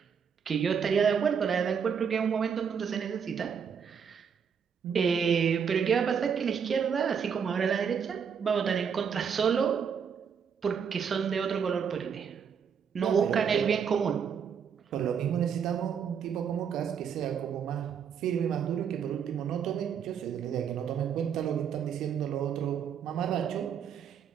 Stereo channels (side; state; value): left; quieter; 7.2 dB